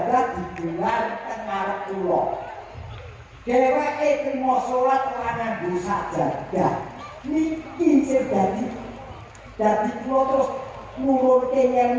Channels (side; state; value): both; identical; correlation 1.00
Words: digelar teng ngarep kula. Dheweke trimo salat ora nganggo sajadah. Niki sing dadi kula terus nurunke